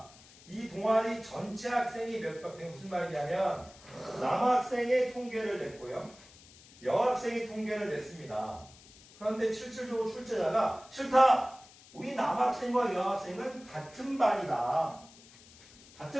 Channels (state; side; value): noise; left; hiss, 23 dB below the sound